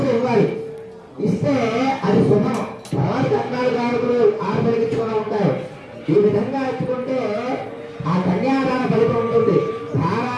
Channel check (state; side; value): identical; both; correlation 1.00